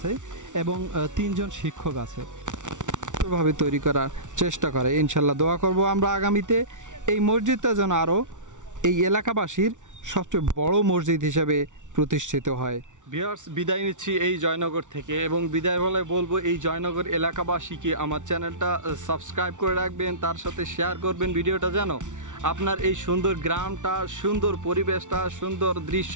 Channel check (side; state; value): left; late; 0.86 ms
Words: এবং 3 জন শিক্ষক আছে। ভাবে তৈরি করার চেষ্টা করে, ইনশাল্লাহ দোয়া করব আমরা আগামীতে এই মসজিদটা যেন আরও এই এলাকাবাসীর সবচেয়ে বড় মসজিদ হিসেবে প্রতিষ্ঠিত হয়। ভিউয়ার্স, বিদায় নিচ্ছি এই জয়নগর থেকে, এবং বিদায় বলে বলবো এই জয়নগর এলাকাবাসীকে আমার চ্যানেলটা সাবস্ক্রাইব করে রাখবেন, তার সাথে শেয়ার করবেন ভিডিওটা, যেন আপনার এই সুন্দর গ্রামটা, সুন্দর পরিবেশটা, সুন্দর